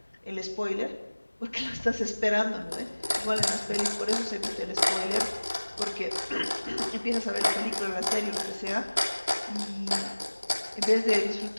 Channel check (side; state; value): both; inverted; correlation -1.00